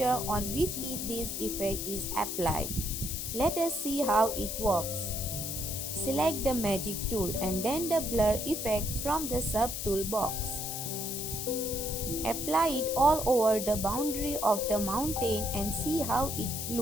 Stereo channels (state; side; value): noise; left; hiss, 4 dB below the sound